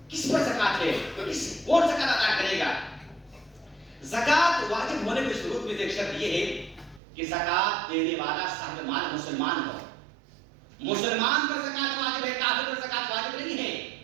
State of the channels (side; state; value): left; drops out; at 7.0 s